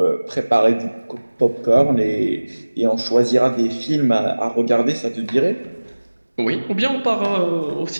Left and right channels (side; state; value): both; inverted; correlation -1.00